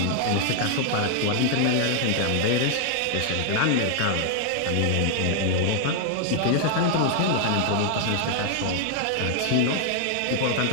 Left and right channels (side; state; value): both; different; correlation 0.00